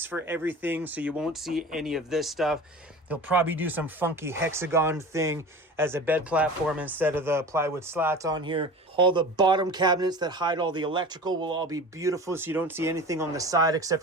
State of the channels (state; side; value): normal; both; correlation 0.36